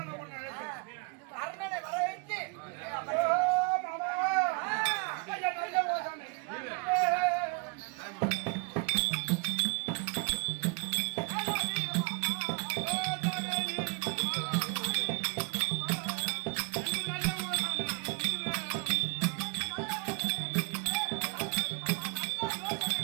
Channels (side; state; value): left; quieter; 33.0 dB